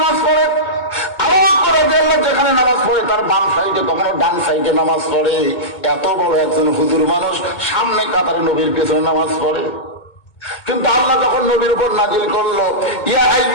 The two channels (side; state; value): right; late; 2.2 ms